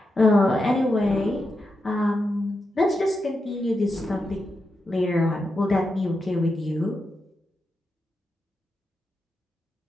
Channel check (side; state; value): both; normal; correlation 0.87